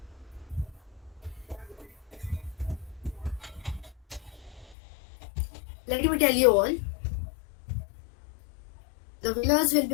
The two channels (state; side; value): drops out; right; at 4.8 s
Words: Let me tell you all, the winners will